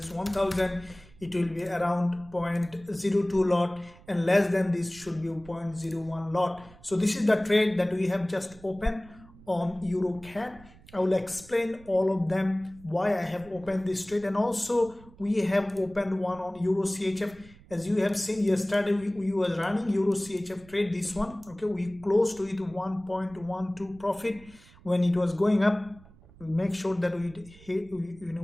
1000, it will be around 0.02 lot, and less than this should be 0.01 lot. So this is the trade that we have just opened on Euro-CAD. I will explain all of them, why I have opened this trade, and also we have opened one on Euro CHF. As you have seen yesterday, we were running Euro CHF trade, this one. Okay, we closed to it 1.12 profit when it was going up. We make sure that we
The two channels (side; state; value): right; noise; rumble, 23 dB below the sound